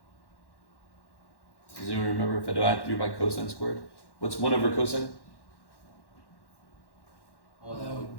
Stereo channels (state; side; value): late; right; 1.1 ms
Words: Does anyone remember if I divide through by cosine squared? What's 1 over cosine? oh, that would